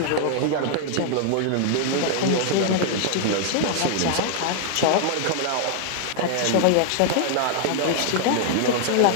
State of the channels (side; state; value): both; different; correlation 0.00